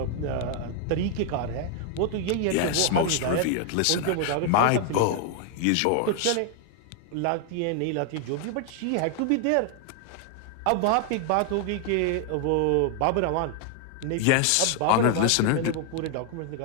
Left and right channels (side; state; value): both; different; correlation 0.00